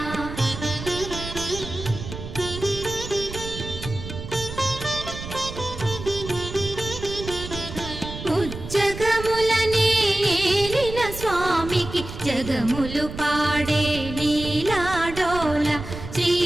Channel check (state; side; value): noise; right; rumble, 10 dB below the sound